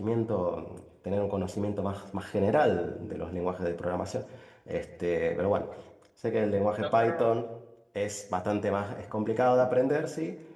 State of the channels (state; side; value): identical; both; correlation 1.00